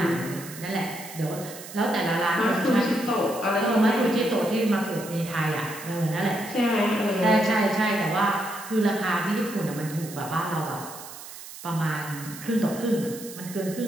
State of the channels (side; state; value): right; noise; hiss, 14 dB below the sound